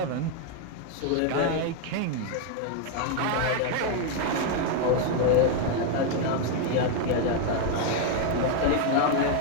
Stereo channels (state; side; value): different; both; correlation 0.01